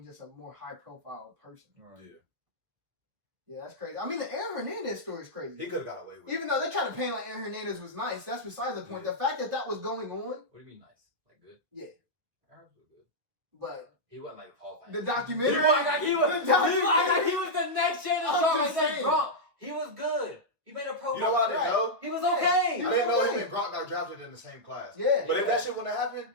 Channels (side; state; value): left; late; 1.8 ms